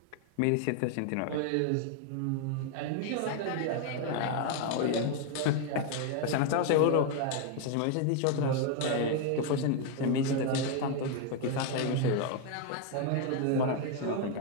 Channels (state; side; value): different; both; correlation 0.00